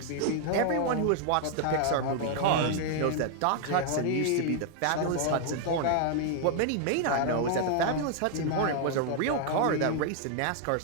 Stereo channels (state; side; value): different; both; correlation 0.00